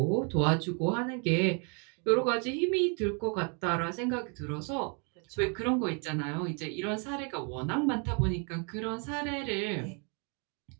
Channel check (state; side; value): quieter; left; 36.7 dB